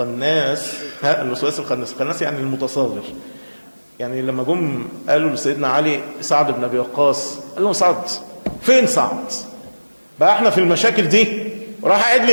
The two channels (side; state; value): both; inverted; correlation -1.00